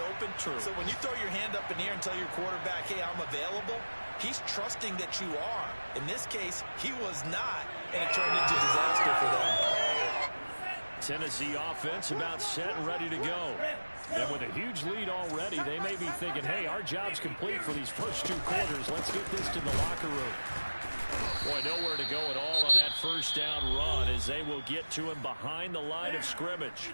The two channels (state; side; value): inverted; both; correlation -1.00